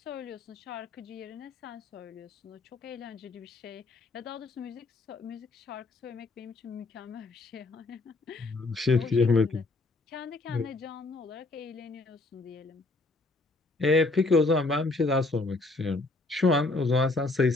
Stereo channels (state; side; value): quieter; right; 3.2 dB